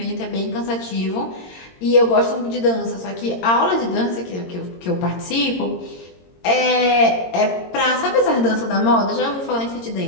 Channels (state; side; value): late; right; 22 ms